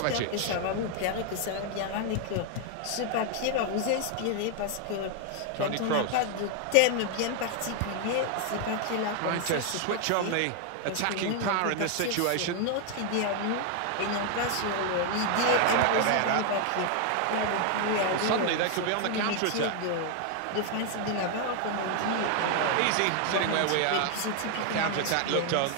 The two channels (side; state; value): both; different; correlation 0.00